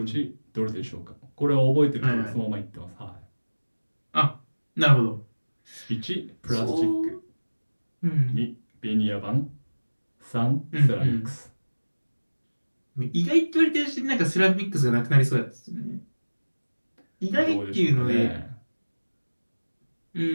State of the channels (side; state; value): both; inverted; correlation -1.00